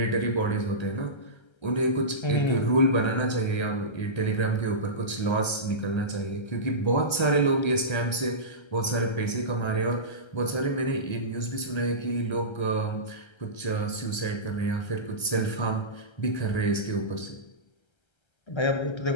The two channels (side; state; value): right; late; 1.3 ms